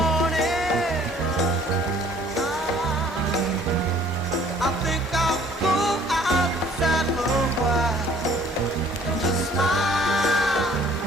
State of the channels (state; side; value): normal; both; correlation 0.56